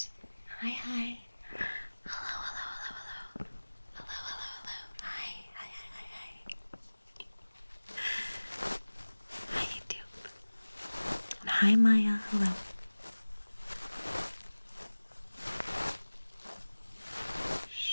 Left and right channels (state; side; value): inverted; both; correlation -1.00